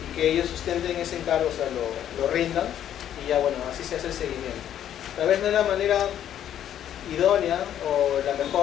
que ellos sustenten ese encargo, o sea, lo rindan y ya bueno, así se hace el seguimiento. Tal vez no es la manera idónea o la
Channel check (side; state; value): right; quieter; 10.5 dB